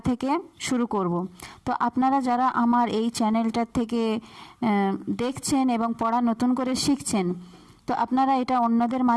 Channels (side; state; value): both; identical; correlation 1.00